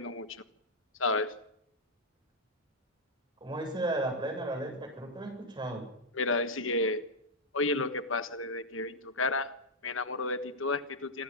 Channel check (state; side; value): normal; both; correlation -0.04